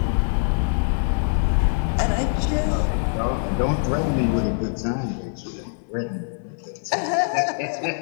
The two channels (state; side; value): silent; right; 63 dB below the other